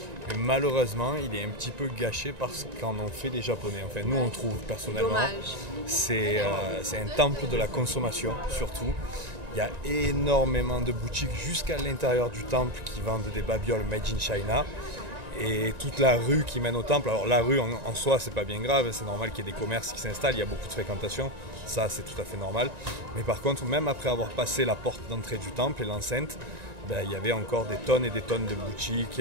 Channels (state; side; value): late; left; 1.9 ms